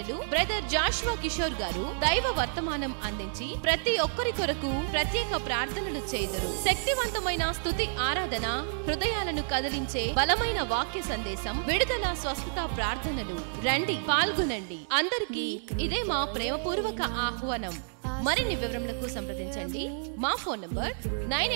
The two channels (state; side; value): silent; left; digital silence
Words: బ్రదర్ జాషువా కిషోర్ గారు దైవ వర్తమానం అందించి ప్రతి ఒక్కరి కొరకు ప్రత్యేక ప్రార్థనలు చేయుదురు. శక్తివంతమైన స్తుతి ఆరాధన, హృదయాలను కదిలించే బలమైన వాక్య సందేశం, విడుదల స్వస్థత ప్రార్థనలు. రండి, పాల్గొనండి. అందరికీ ఇదే మా ప్రేమపూర్వక ఆహ్వానం. మరిన్ని వివరములకు సంప్రదించండి. మా ఫోన్ నంబర్